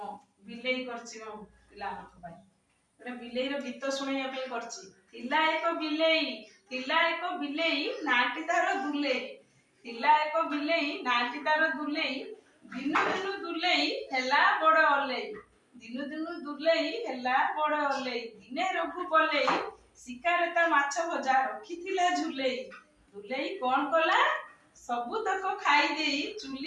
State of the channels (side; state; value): both; identical; correlation 1.00